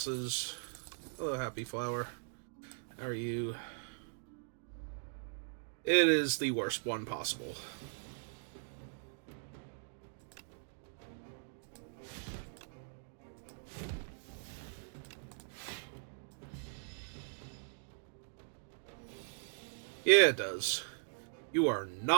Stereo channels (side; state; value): left; silent; digital silence